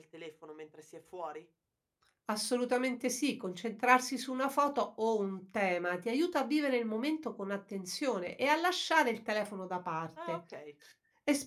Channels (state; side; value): identical; both; correlation 1.00